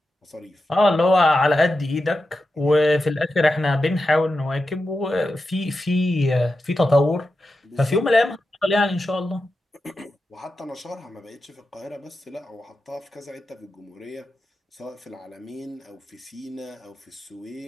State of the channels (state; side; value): normal; both; correlation 0.90